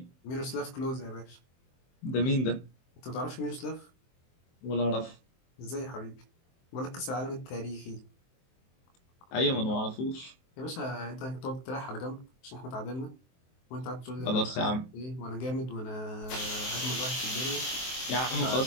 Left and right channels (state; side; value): late; right; 23 ms